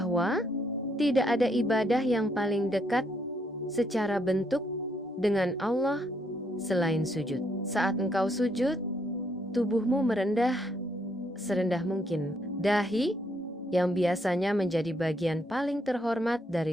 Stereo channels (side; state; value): both; normal; correlation 0.73